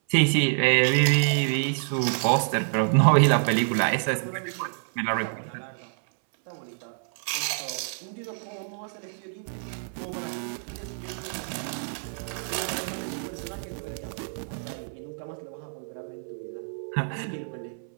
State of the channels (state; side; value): silent; left; 59 dB below the other